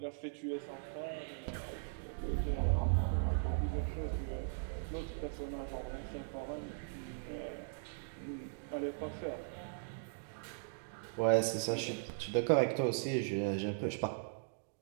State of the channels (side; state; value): left; silent; digital silence